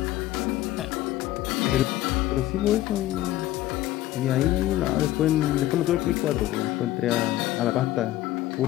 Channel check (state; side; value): quieter; right; 15.0 dB